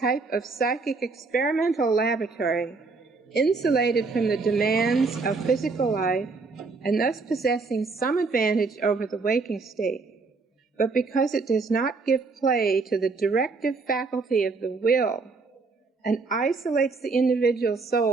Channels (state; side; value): quieter; left; 4.2 dB